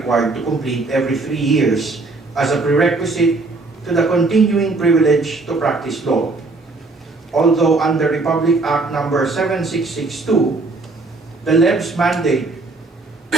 to complete every 3 years as a prerequisite to the continuing privilege to practice law. Although under Republic Act number 7662, the LEB's mandate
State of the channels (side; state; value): left; quieter; 3.5 dB